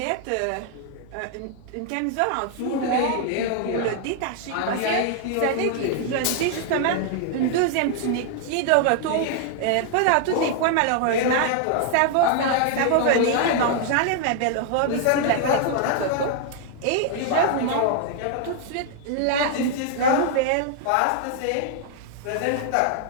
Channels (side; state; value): both; different; correlation 0.00